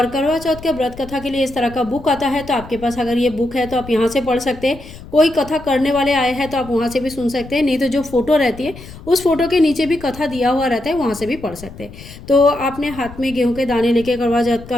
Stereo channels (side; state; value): left; noise; rumble, 16 dB below the sound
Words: करवा चौथ के व्रत कथा के लिए इस तरह का बुक आता है, तो आपके पास अगर ये बुक है तो आप यहाँ से पढ़ सकते हैं। कोई कथा करने वाले आए हैं तो आप वहाँ से भी सुन सकते हैं, नहीं तो जो फोटो रहती है उस फोटो के नीचे भी कथा दिया हुआ रहता है, वहाँ से भी पढ़ सकते हैं। तो आपने हाथ में गेहूँ के दाने लेके करवा चौथ